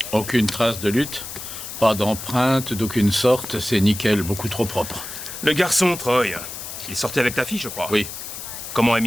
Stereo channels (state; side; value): noise; left; hiss, 9 dB below the sound